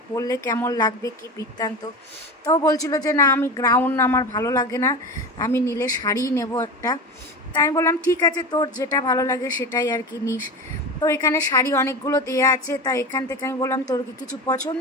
পরলে কেমন লাগবে কি বৃত্তান্ত। তো বলছিল যে না আমি গ্রাউন্ড আমার ভালো লাগে না, আমি নিলে শাড়ি নেব একটা। তাই আমি বললাম ঠিক আছে তোর যেটা ভালো লাগে সেটাই আর কি নিস। তো এখানে শাড়ি অনেকগুলো দেয়া আছে, তা এখান থেকে আমি বললাম তোর কি কিছু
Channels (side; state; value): both; normal; correlation 0.26